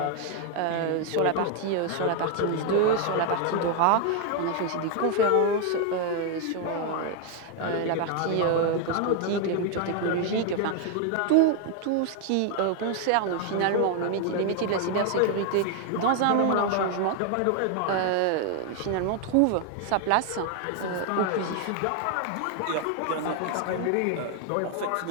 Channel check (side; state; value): both; different; correlation 0.01